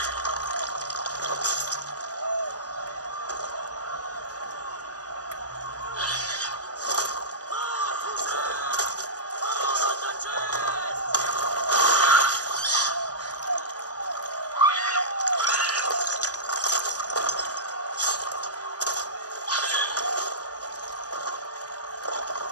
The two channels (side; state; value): right; late; 0.68 ms